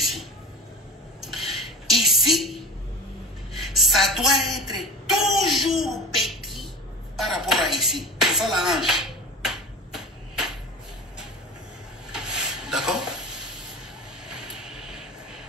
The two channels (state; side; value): normal; both; correlation 0.32